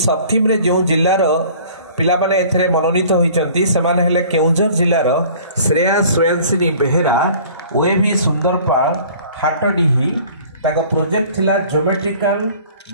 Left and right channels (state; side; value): inverted; both; correlation -0.49